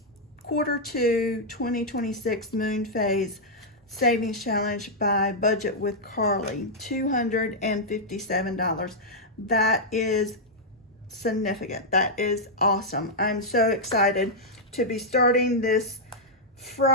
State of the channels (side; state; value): both; normal; correlation -0.06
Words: 2 2026 moon phase savings challenge by Budget with Carly. $257. That is significant. That is awesome. I'm so excited to be starting this